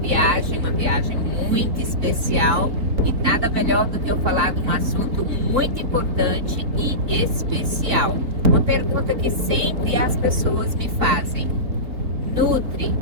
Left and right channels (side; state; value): left; late; 3.8 ms